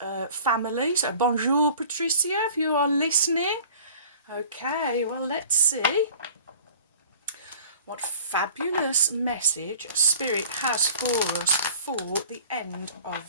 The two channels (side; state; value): both; inverted; correlation -0.45